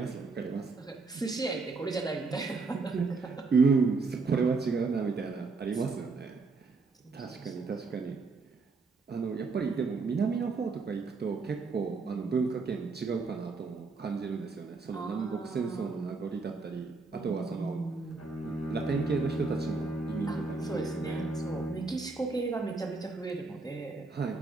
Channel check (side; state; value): left; quieter; 4.1 dB